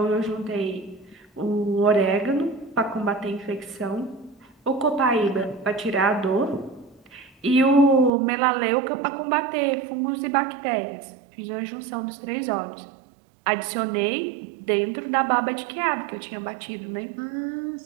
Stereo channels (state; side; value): drops out; left; at 8.1 s